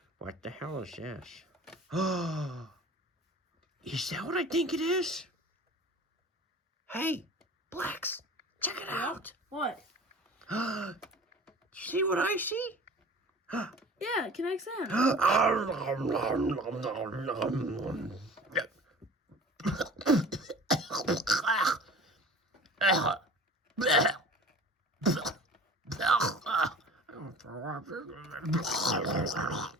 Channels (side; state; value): both; normal; correlation 0.42